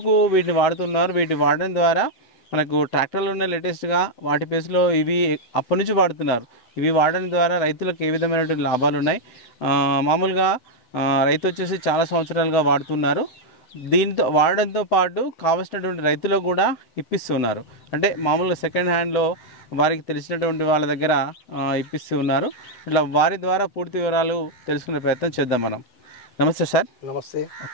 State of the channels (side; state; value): right; late; 8.0 ms